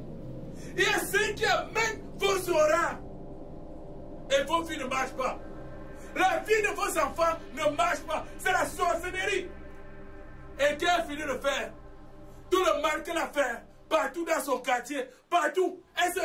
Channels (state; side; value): identical; both; correlation 1.00